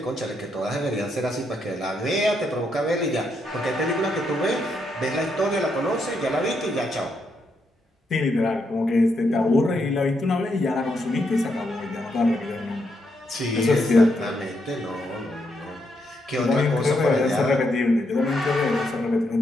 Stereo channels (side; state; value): both; normal; correlation 0.79